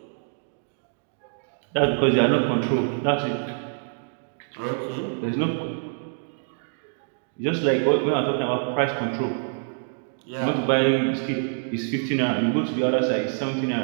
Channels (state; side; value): silent; left; digital silence